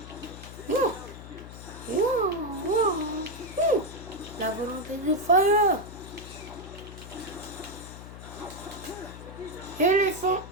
Oh. Oh. Oh. La volonté du fire. Éléphant.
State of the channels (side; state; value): left; noise; hum, 13 dB below the sound